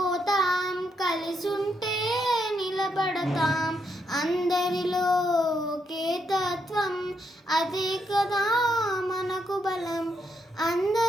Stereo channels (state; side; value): normal; both; correlation 0.78